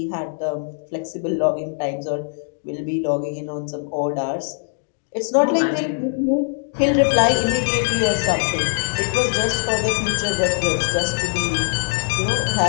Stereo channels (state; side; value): silent; right; digital silence